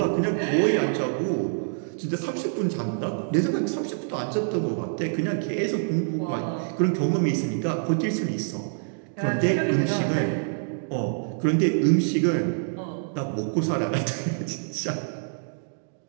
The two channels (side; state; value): left; silent; digital silence